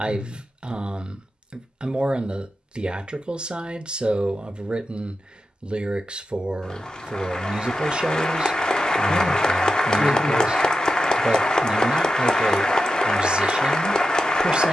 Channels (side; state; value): both; normal; correlation 0.90